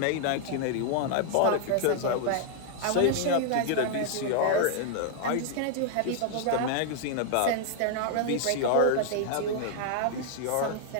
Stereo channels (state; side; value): different; both; correlation 0.00